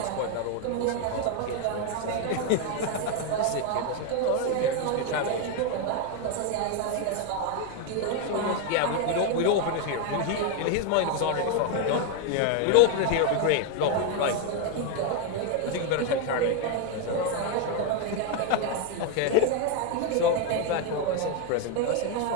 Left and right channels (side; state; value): both; different; correlation 0.01